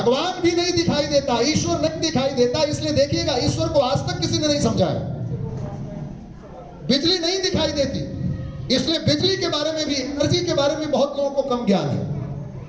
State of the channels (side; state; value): both; identical; correlation 1.00